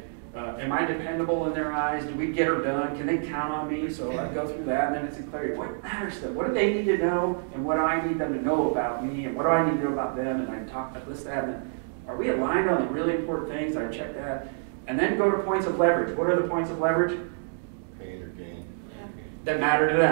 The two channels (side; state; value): left; silent; digital silence